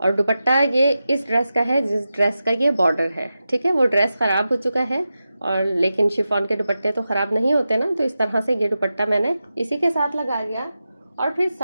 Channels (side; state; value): both; inverted; correlation -0.92